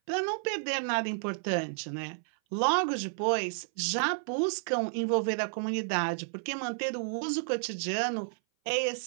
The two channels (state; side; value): silent; left; 57 dB below the other